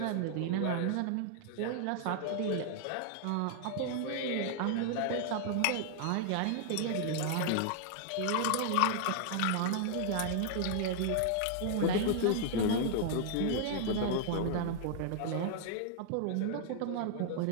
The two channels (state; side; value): different; both; correlation 0.00